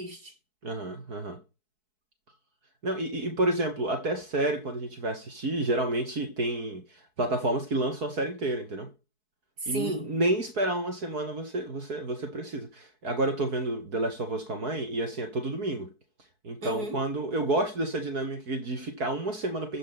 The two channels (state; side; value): late; left; 4.6 ms